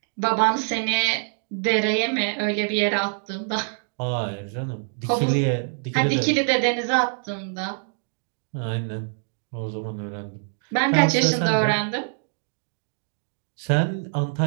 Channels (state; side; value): silent; left; digital silence